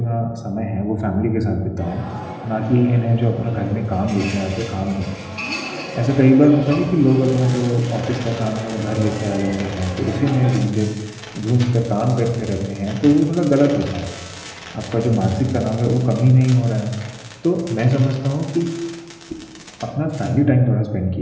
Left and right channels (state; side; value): identical; both; correlation 1.00